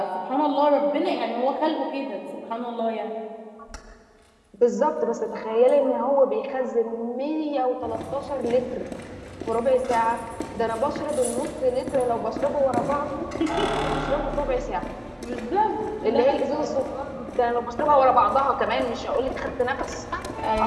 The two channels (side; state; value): both; identical; correlation 1.00